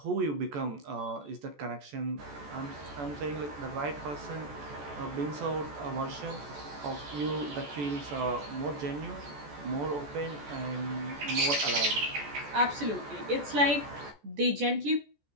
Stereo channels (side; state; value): left; late; 14 ms